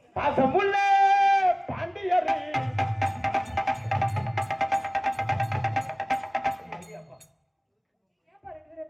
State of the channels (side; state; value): both; identical; correlation 1.00